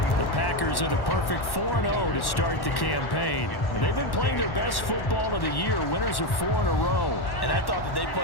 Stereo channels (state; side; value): late; right; 1.1 ms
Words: The Packers are the perfect 4-0 to start the campaign. And they've been playing their best football of the year, winners of 4 in a row. And I thought that they